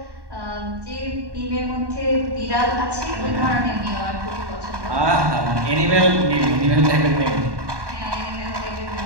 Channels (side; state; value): left; late; 1.1 ms